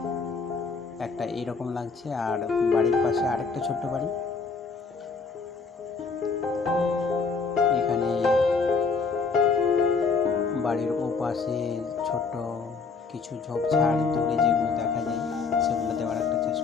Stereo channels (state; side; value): quieter; right; 4.8 dB